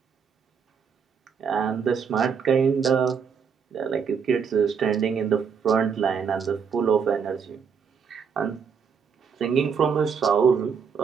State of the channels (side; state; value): left; quieter; 6.4 dB